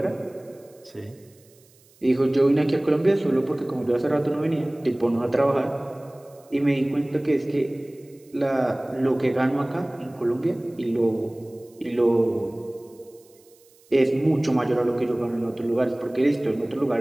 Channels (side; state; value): right; noise; hiss, 30 dB below the sound